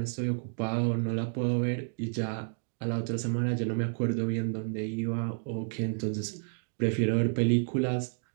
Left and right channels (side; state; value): left; silent; digital silence